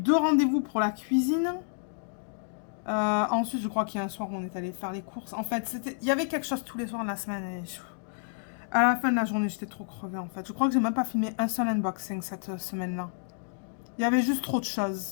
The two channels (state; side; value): silent; right; digital silence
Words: rendez-vous pour la cuisine. Ensuite, je crois qu'il y a un soir où on est allé faire les courses. En fait, il y avait quelque chose tous les soirs de la semaine. Et à la fin de la journée, j'étais trop crevée, en fait. Je crois que j'ai même pas filmé un seul unboxing cette semaine-là. Il y avait juste trop de